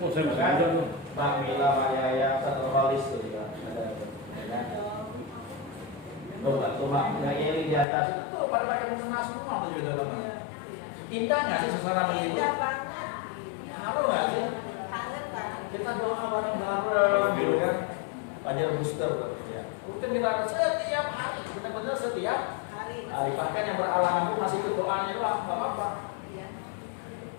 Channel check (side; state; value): right; drops out; at 7.9 s